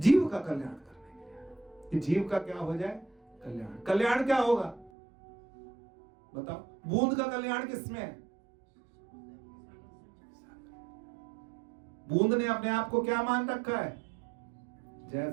का कल्याण करने के लिए। कि जीव का क्या हो जाए? कल्याण। कल्याण क्या होगा बताओ? बूंद का कल्याण किसमें है? बूंद ने अपने आप को क्या मान रखा है?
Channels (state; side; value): drops out; left; at 4.9 s